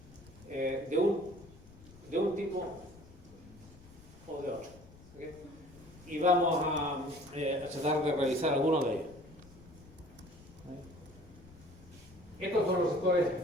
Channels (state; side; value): noise; left; rumble, 21 dB below the sound